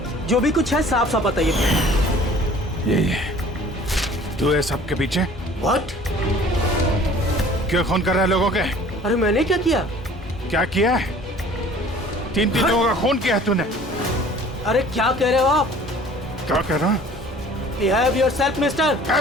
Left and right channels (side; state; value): both; normal; correlation 0.49